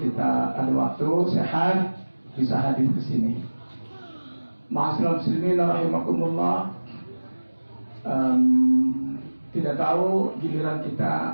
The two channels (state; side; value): inverted; both; correlation -1.00